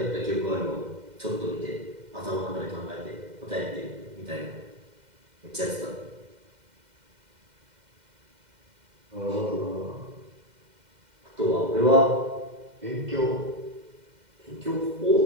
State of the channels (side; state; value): left; late; 2.1 ms